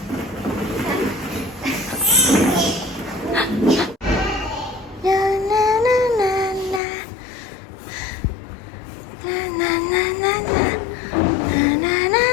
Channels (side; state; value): right; drops out; at 6.8 s